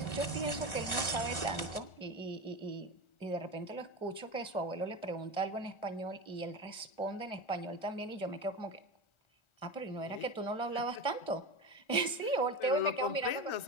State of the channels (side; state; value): right; late; 1.4 ms